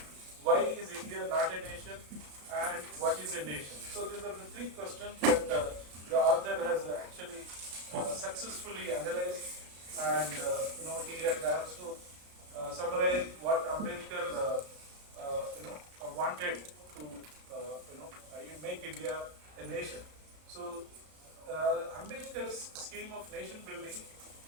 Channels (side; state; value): left; late; 34 ms